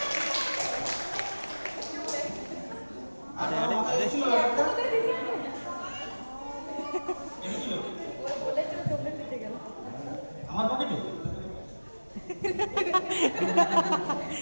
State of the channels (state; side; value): inverted; both; correlation -1.00